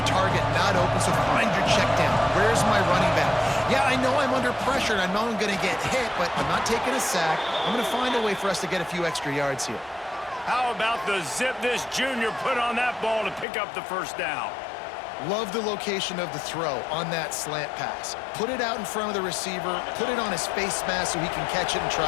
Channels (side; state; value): right; drops out; at 13.5 s